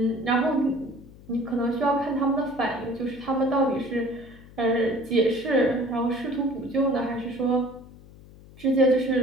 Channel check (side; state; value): left; noise; hum, 21 dB below the sound